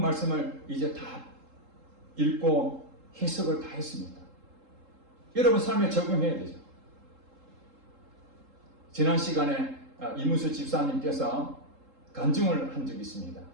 말씀을 이제 다 읽고 해석을 다 했습니다. 여러분 삶에 적용해야 되죠. 지난 시간에 이문수 집사님께서 간증을 한 적이 있습니다.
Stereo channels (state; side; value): late; left; 3.7 ms